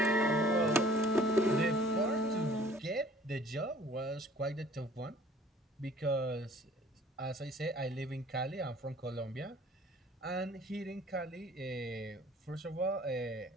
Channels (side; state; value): both; normal; correlation 0.53